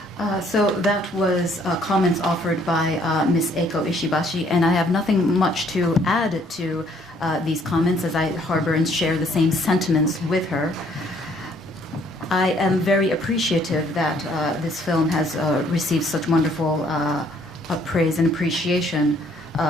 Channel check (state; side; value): normal; both; correlation 0.64